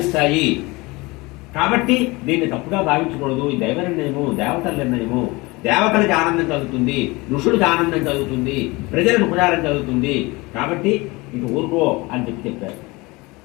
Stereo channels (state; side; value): quieter; right; 23.7 dB